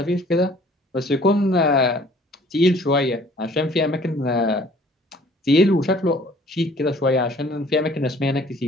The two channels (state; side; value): normal; both; correlation 0.55